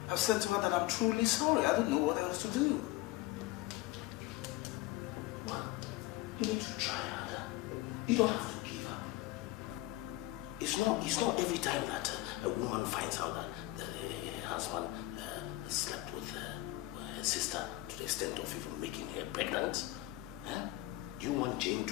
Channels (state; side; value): quieter; right; 18.2 dB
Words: I've said to her that I'm truly sorry. I don't know what else to do. Well, you need to try harder. You don't have to give up. It's not every time that a woman finds out that her husband slept with her sister to the extent of even making her pregnant. Do you want Jane